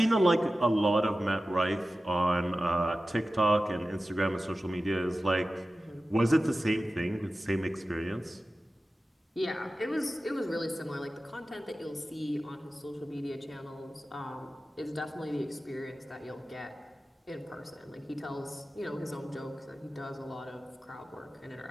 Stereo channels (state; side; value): normal; both; correlation 0.95